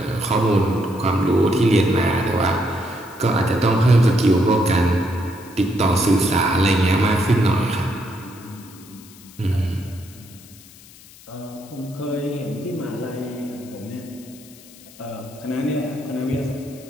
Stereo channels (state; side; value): noise; left; hiss, 22 dB below the sound